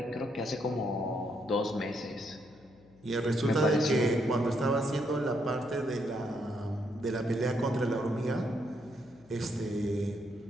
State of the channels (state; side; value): noise; left; hum, 26 dB below the sound